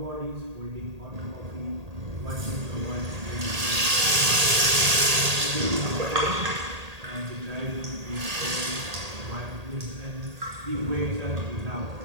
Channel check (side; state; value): left; late; 1.8 ms